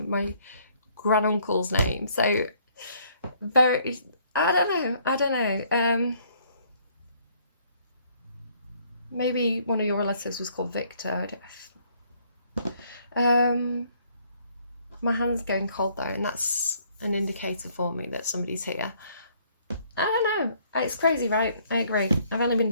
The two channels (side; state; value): both; inverted; correlation -0.64